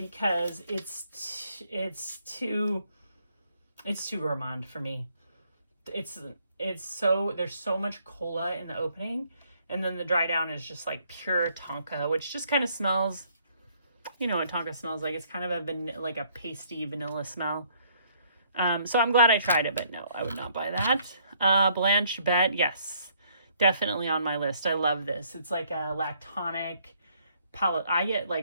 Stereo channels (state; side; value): inverted; both; correlation -0.66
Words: it's too gourmand for me. It's so, there's so much cola in the opening, and then the dry down is just like pure tonka, which just kind of smells, you know what tonka smells like. It's kind of like a pasty vanilla smell. So I'm glad I tried it, but no, I would not buy that. Blanche Bette, yes, definitely on my list. I love this. It's like a lactonic I get